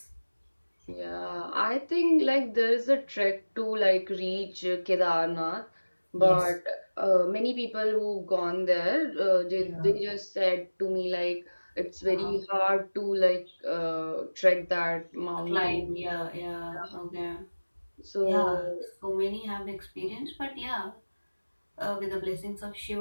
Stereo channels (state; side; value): inverted; both; correlation -1.00